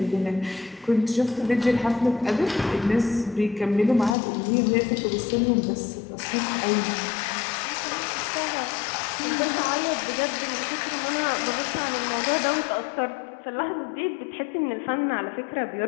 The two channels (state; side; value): drops out; right; at 4.2 s